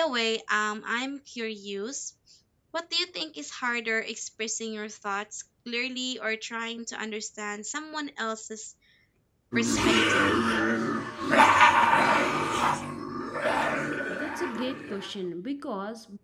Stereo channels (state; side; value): identical; both; correlation 1.00